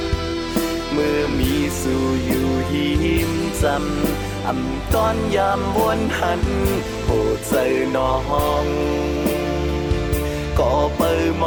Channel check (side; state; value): both; identical; correlation 1.00